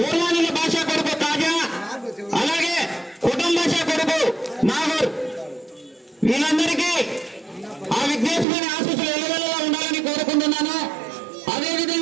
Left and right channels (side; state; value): left; drops out; at 8.5 s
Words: భాష కొడుకు తాజా, అలాగే కుటుంబ భాష కొడుకు నాగూర్, వీళ్ళందరికీ ఆ విఘ్నేశ్వరుని ఆశీస్సులు ఎల్లవెల్లలా ఉండాలని కోరుకుంటున్నాను.